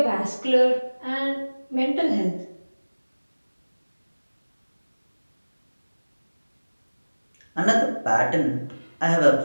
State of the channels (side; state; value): both; inverted; correlation -1.00